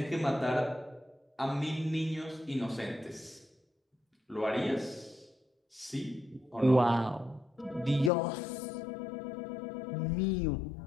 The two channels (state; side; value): drops out; right; at 8.1 s